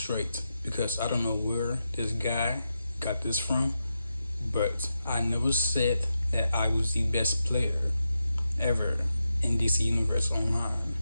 because I don't know where this guy got this from, but I never said that I was the best player ever in DC Universe Online.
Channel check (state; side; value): inverted; both; correlation -0.87